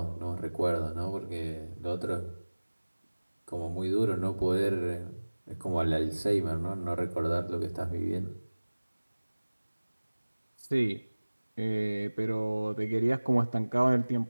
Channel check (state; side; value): inverted; both; correlation -1.00